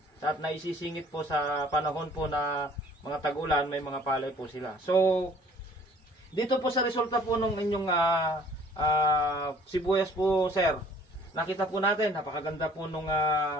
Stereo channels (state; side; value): normal; both; correlation 0.55